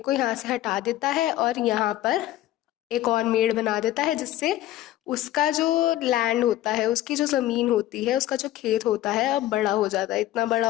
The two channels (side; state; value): right; quieter; 14.4 dB